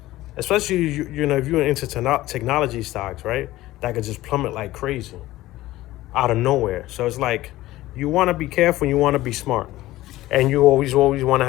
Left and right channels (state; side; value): quieter; right; 16.6 dB